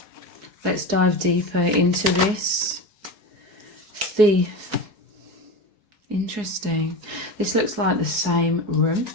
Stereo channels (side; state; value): left; late; 4.7 ms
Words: Let's dive deeper into this. Thief. Interesting. This looks like the same room